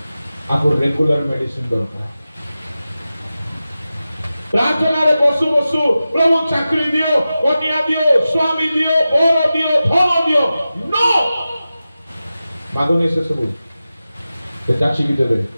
आपको रेगुलर मेडिसिन दरकार। प्रार्थना रे बसु बसु प्रभु चाकरी दियो, कन्या दियो, स्वामी दियो, बर दियो, धन दियो, नो मागनी से सब जाचिकी देवे,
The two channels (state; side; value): inverted; both; correlation -0.94